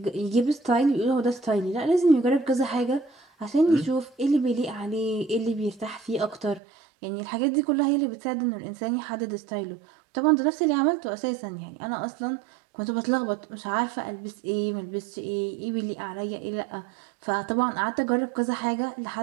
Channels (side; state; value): left; drops out; at 6.6 s